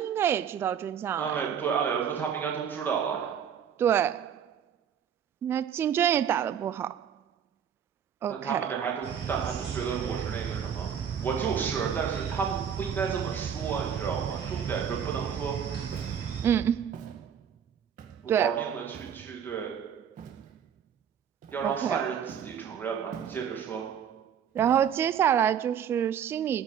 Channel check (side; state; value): left; quieter; 8.2 dB